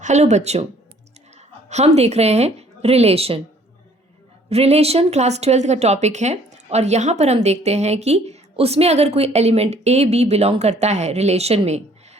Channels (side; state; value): both; normal; correlation 0.58